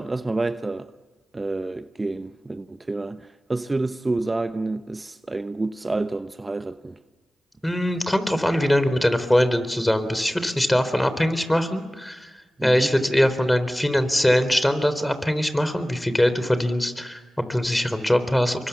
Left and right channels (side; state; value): both; normal; correlation 0.97